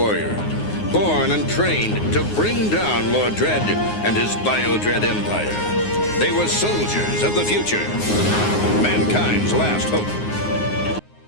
born and trained to bring down Lord Dredd and his Bio-Dread empire. They were soldiers of the future, mankind's last hope.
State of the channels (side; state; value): right; late; 9.6 ms